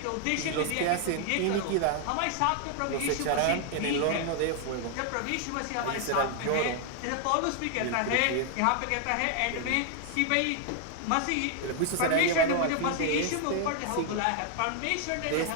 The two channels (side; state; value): both; different; correlation 0.00